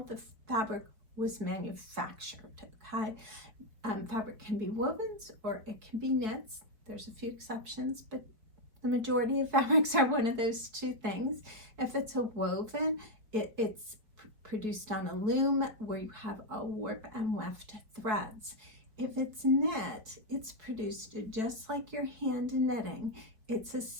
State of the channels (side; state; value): left; late; 4.5 ms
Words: fabric was manufactured. Okay, fabric can be wovens or it can be knits. There's a few exceptions, but the majority of fabrics are one of those two things. If it's a woven, it's produced on a loom where you have a warp and weft threads. If it's knit, it's produced just like your hand knitting. It's a